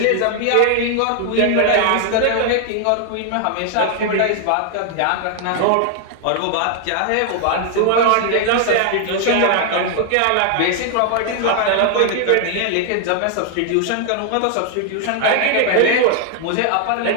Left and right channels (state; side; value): different; both; correlation 0.00